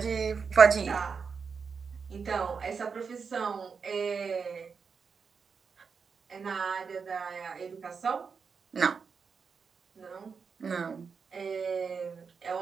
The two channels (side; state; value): left; quieter; 5.6 dB